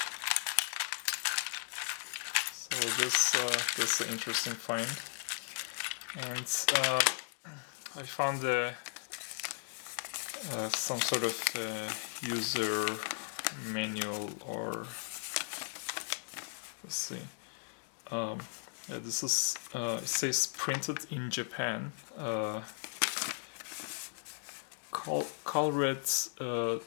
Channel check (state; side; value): silent; right; digital silence